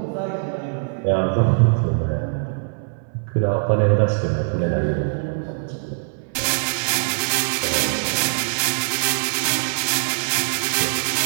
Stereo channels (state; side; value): silent; left; 64 dB below the other